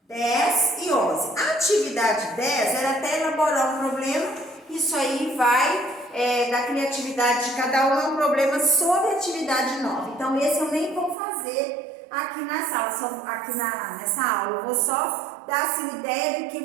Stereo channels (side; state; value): left; drops out; at 11.2 s